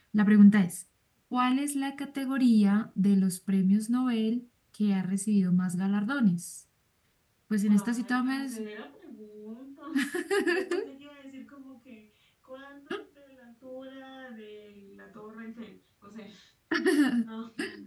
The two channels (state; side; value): identical; both; correlation 1.00